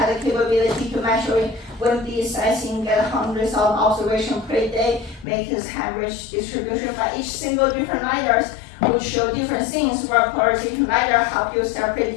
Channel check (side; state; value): right; drops out; at 5.2 s